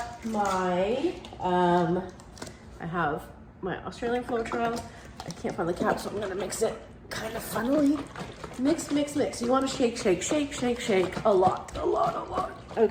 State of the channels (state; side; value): identical; both; correlation 1.00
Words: my, I have my Australian Floetrol. I can't find the cap, so I'm gonna mix it kind of funnily. Mix, mix, mix. You wanna shake, shake, shake, shake, shake a lot.